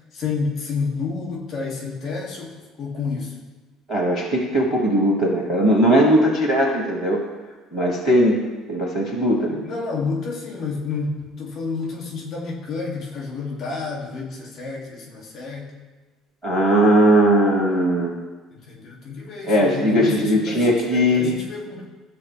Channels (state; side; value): normal; both; correlation 0.48